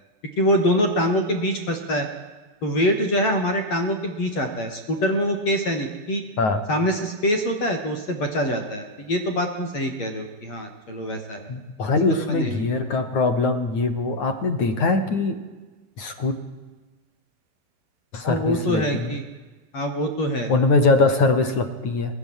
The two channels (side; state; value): right; late; 9.4 ms